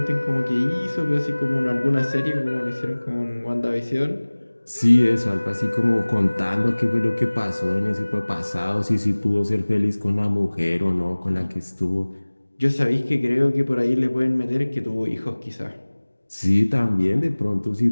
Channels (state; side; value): inverted; both; correlation -1.00